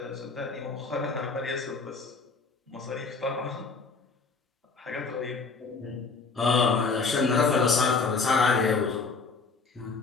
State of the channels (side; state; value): right; quieter; 4.5 dB